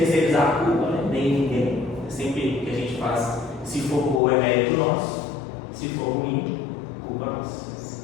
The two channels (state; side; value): drops out; right; at 4.2 s